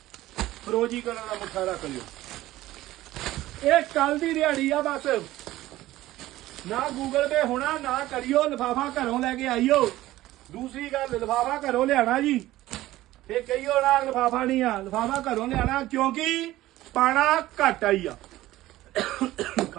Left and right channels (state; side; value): quieter; left; 16.0 dB